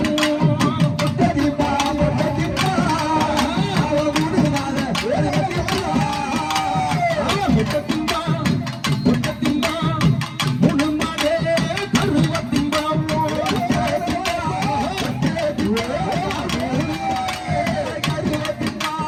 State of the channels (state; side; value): identical; both; correlation 1.00